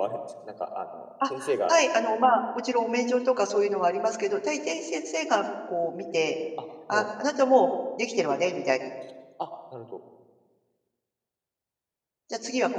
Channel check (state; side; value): identical; both; correlation 1.00